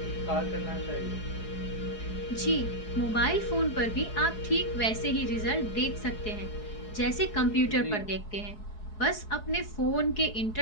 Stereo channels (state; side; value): late; right; 4.7 ms